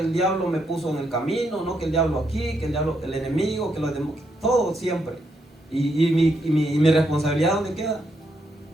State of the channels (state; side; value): normal; both; correlation 0.78